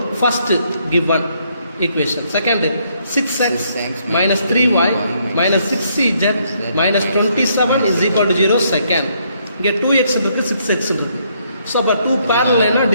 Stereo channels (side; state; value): both; inverted; correlation -0.71